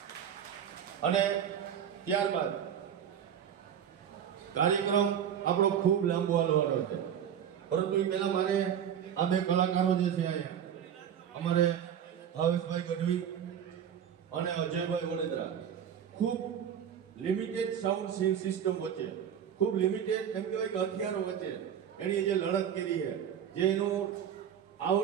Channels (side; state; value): left; quieter; 8.9 dB